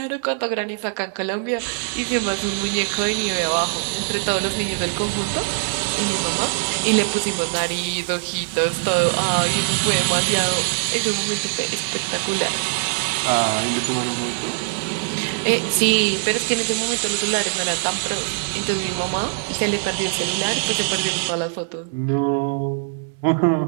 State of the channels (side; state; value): left; silent; 64 dB below the other